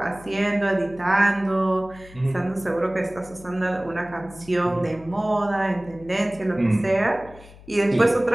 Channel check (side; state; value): left; noise; hum, 20 dB below the sound